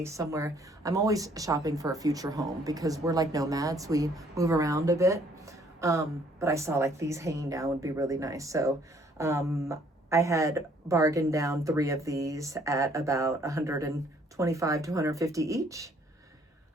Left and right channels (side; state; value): both; normal; correlation 0.63